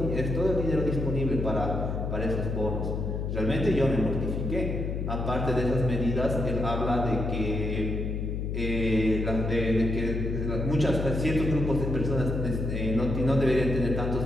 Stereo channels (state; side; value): noise; left; hum, 2 dB below the sound